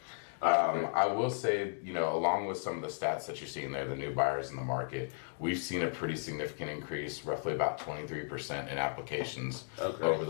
I will say, along with some of the stats that you're seeing there, the new buyers in the market, we've seen a pretty significant increase, roughly about 23% in applications over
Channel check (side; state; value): right; silent; digital silence